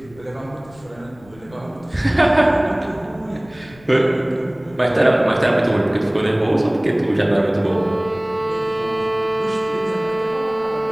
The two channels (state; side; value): noise; left; rumble, 25 dB below the sound